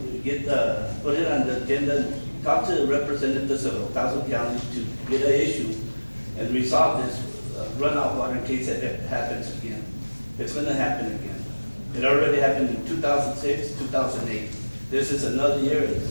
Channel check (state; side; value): inverted; both; correlation -1.00